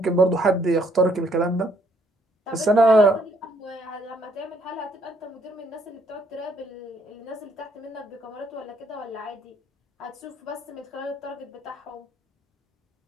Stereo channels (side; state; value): both; normal; correlation 0.67